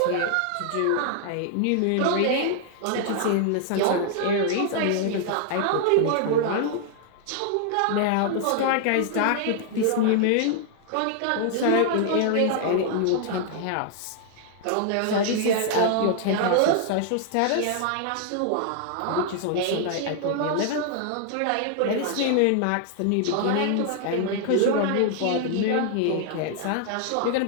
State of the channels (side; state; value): both; different; correlation 0.00